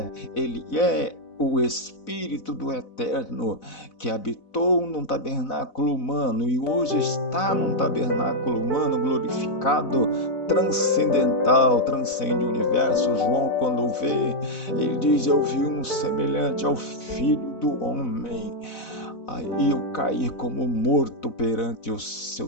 Ele é o Espírito do Eterno, que habitou num tabernáculo humano e hoje está num tabernáculo humano glorificado, transcendental, transcende o universo. João, quando o vê, ele diz: eu vi um semelhante ao Filho do Homem. Aí eu caí como morto perante os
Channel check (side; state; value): right; late; 4.0 ms